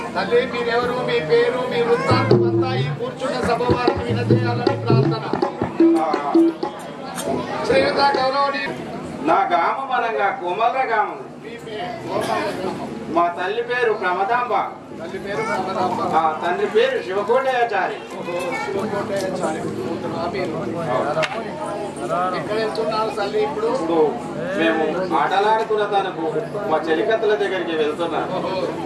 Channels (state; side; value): identical; both; correlation 1.00